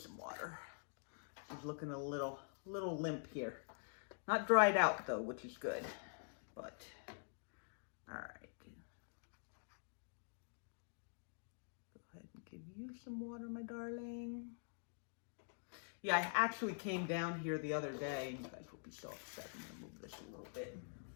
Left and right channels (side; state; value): right; silent; digital silence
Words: some water. She's looking a little limp here. Not dried out though, which is good, but all right. Go ahead and give you some water, my darling. Yeah, I actually came down here the other day, and you guys will be so upset. I'm gonna move this a little bit.